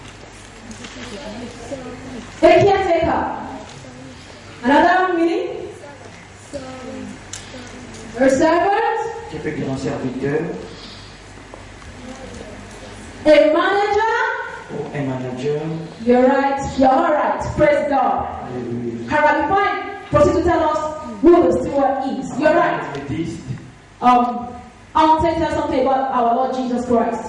A caretaker. Another meaning? A servant? Qui peut dire un serviteur? A manager? Ou un manager? You're right. You're all right. Praise God. Alléluia. Alright, before I proceed to tell us who the steward is, you're right. Méthodiste, I want to tell something about our Lord Jesus Christ.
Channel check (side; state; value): both; identical; correlation 1.00